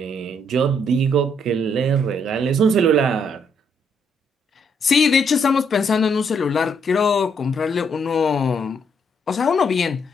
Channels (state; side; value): normal; both; correlation 0.72